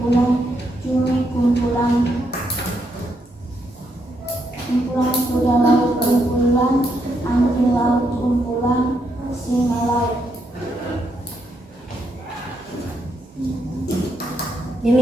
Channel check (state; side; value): normal; both; correlation 0.78